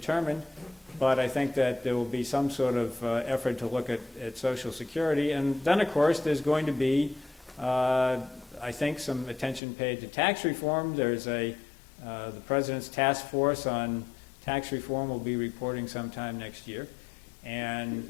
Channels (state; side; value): drops out; right; at 9.6 s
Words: But I think that there will be some sort of effort to look at Social Security. And then, of course, there's going to be, I think, some attention paid to tax reform. There's the President's task force on tax reform will be reporting sometime next year. And